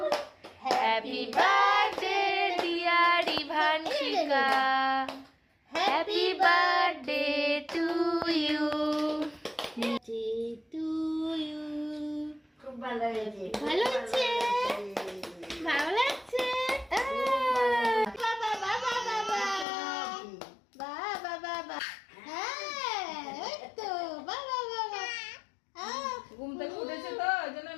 Happy birthday dear Ivanshika. Happy birthday to you. Birthday to you. খুব ভালো হয়েছে। ভালো হচ্ছে? ভালো লাগছে? বাবা বাবা বাবা বাবা বাবা। হ্যাঁ এই তো বাবা বাবা। ঘুম থেকে উঠেছে তো ওই জন্য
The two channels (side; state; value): right; drops out; at 19.7 s